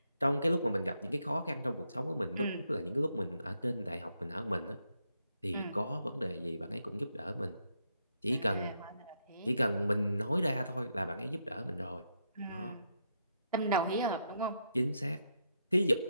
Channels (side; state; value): both; inverted; correlation -0.79